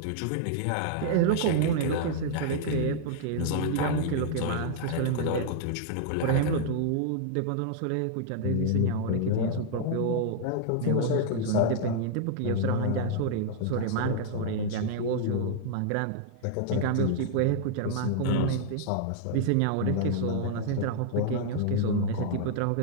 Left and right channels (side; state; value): both; different; correlation -0.01